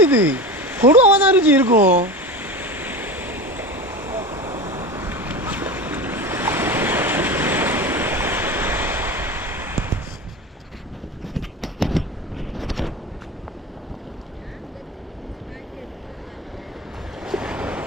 இது. கொடுவாக தான் இருந்துச்சு இருக்கும்.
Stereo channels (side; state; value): both; normal; correlation 0.28